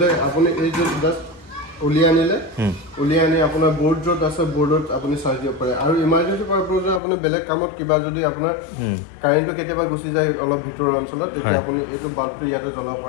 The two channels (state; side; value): drops out; right; at 7.0 s